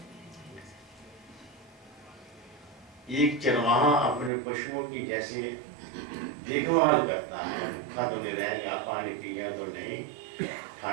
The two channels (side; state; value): left; drops out; at 4.3 s